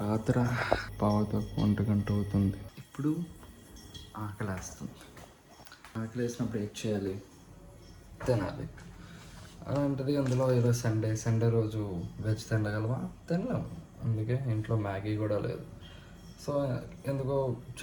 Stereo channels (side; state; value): both; identical; correlation 1.00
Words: రాత్రి పావుతకు 1 గంట అవుతుంది. ఇప్పుడు ఆకలేస్తుంది. ఆకలేసినప్పుడు ఏం చేయాలి? తినాలి. అలాంటిది అందులో ఈరోజు సండే రోజు వెజ్ తినగలమా? తినలేము. అందుకే ఇంట్లో మ్యాగీ కూడా లేదు. సో ఎందుకో